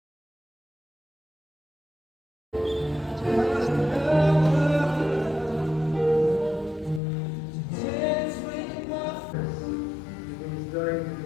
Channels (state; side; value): drops out; right; at 7.0 s